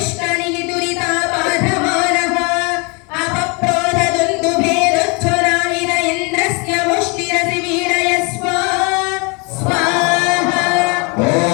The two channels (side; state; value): right; quieter; 30.8 dB